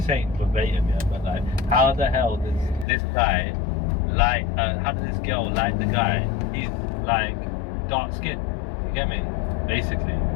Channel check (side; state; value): right; drops out; at 2.9 s